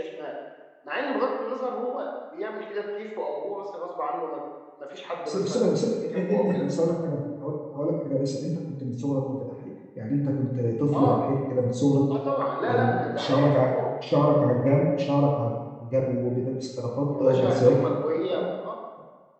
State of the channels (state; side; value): identical; both; correlation 1.00